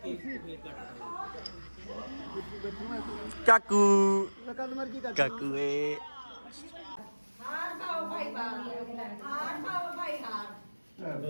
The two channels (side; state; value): both; inverted; correlation -1.00